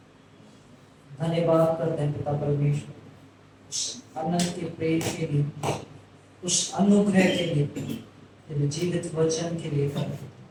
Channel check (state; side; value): identical; both; correlation 1.00